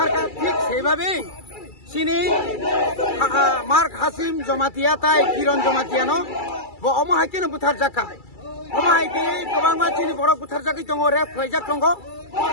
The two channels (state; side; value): late; right; 2.3 ms